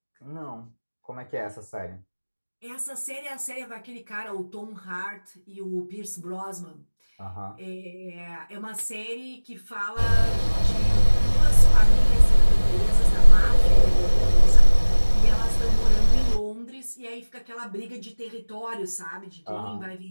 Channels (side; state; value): both; inverted; correlation -1.00